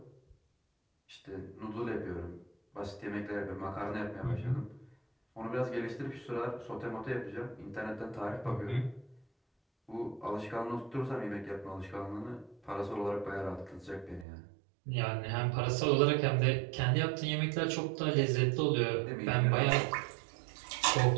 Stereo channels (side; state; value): left; drops out; at 14.2 s